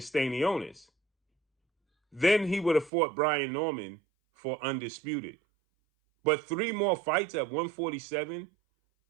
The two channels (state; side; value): drops out; left; at 2.9 s